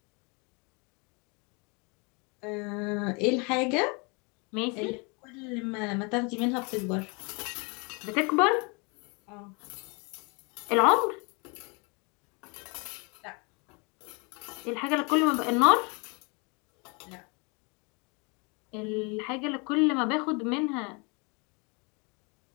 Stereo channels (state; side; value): quieter; right; 31.4 dB